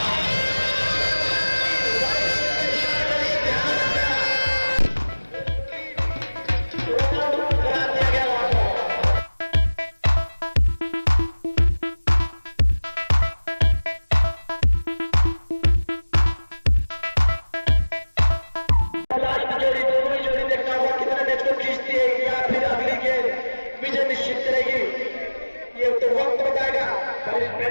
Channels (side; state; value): both; inverted; correlation -1.00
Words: विजय निश्चित करेगी ये तो वक्त बताएगा। पर इस